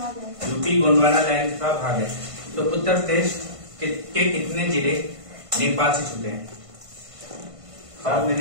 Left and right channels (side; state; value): left; late; 1.5 ms